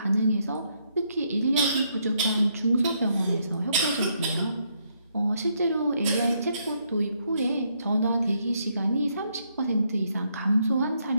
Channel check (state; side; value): inverted; both; correlation -0.74